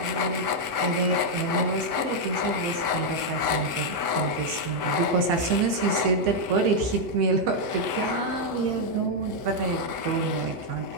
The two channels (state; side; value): late; left; 7.9 ms